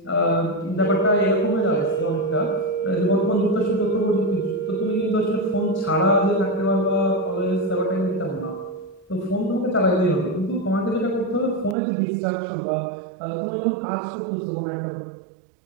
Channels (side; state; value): left; drops out; at 11.8 s